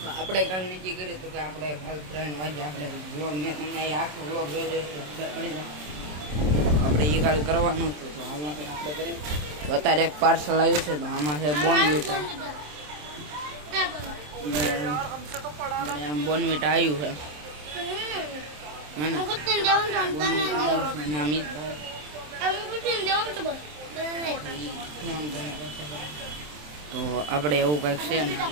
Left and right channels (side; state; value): left; late; 27 ms